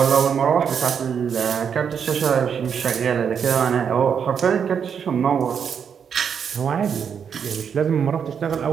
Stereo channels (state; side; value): quieter; left; 7.3 dB